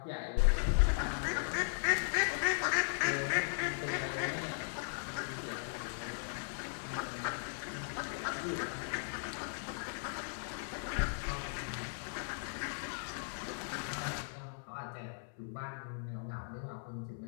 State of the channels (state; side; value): silent; right; 53 dB below the other